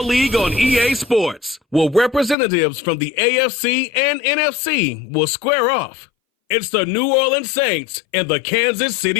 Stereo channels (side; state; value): right; drops out; at 2.4 s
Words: League on EA Sports, where representatives from the AFC and NFC will square off. It's the New Orleans Saints and the Kansas